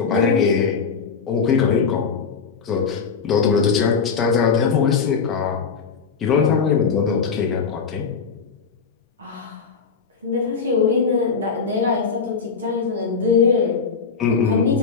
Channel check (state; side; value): quieter; right; 5.7 dB